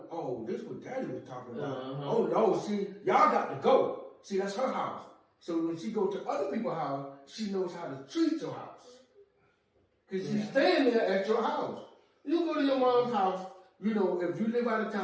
oh, this is what Daddy was talking about. Oh no, see, y'all got to go. See, that's her house. So when she go to other people's house, she knows how to treat your house. Because she's staying there at your house. You go to your mom's house, you know, if you live out of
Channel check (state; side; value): identical; both; correlation 1.00